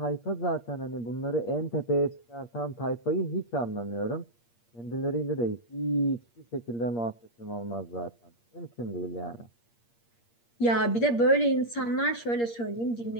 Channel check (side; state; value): right; late; 8.6 ms